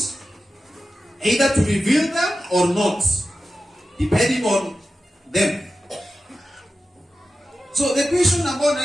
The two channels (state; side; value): normal; both; correlation 0.93